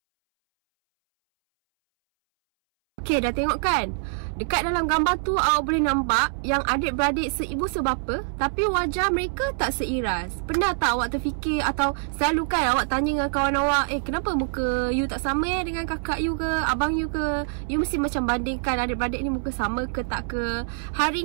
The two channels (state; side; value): silent; left; 62 dB below the other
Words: Okay, dah tengok kan? Dekat dalam gambar tu awak boleh nampak yang adik-beradik seibu sebapa, tapi wajah mereka tak seiras. Pernah tak awak terfikir atau selalu kan awak tanya dengan kawan awak, kenapa muka you tak sama dengan kakak you ke, abang you ke? You mesti macam bandingkan adik-beradik ni muka sama ke tak ke.